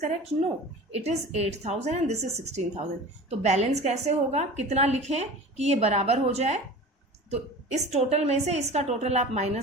No, it is 8,000 and this is 16,000. तो बैलेंस कैसे होगा? कितना लिखें कि ये बराबर हो जाए? तो इस टोटल में से इसका टोटल आप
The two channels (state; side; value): normal; both; correlation 0.37